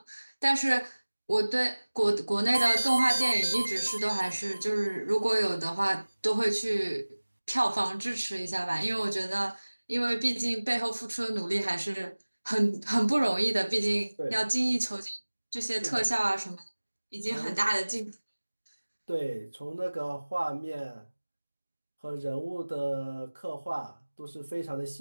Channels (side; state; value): both; inverted; correlation -1.00